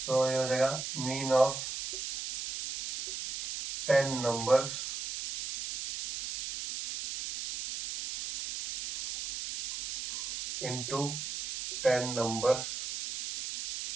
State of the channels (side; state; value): right; noise; hiss, 6 dB below the sound